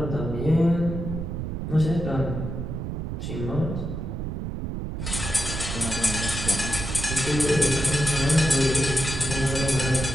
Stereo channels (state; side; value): noise; right; rumble, 4 dB below the sound